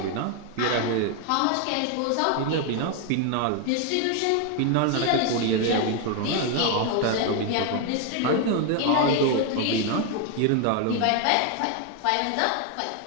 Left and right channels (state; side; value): different; both; correlation 0.01